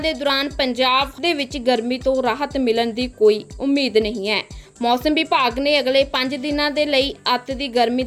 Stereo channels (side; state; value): both; identical; correlation 1.00